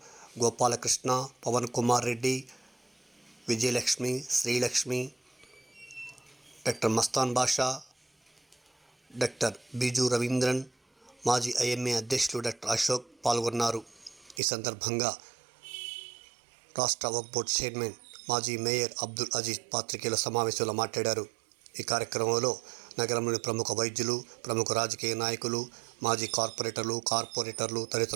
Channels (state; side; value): drops out; left; at 14.4 s